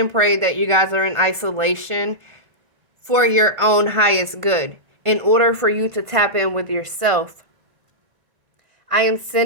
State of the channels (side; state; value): left; late; 1.5 ms